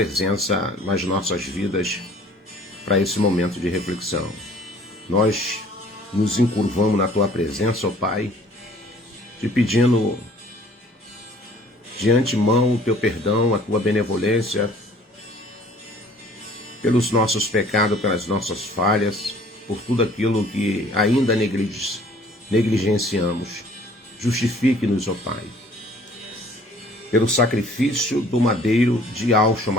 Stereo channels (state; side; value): normal; both; correlation 0.54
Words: nas nossas vidas para esse momento de reflexão. Nós nos encurvamos na tua presença, ó Pai, te pedindo de antemão o teu perdão, a tua benevolência, pelos nossos pecados, pelas nossas falhas, por tudo aquilo que ainda negligenciamos. Justifique-nos, ó Pai, pelo sacrifício do madeiro de Yahshua